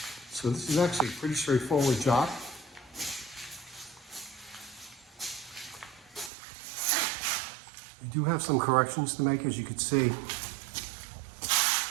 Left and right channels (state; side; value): drops out; left; at 6.3 s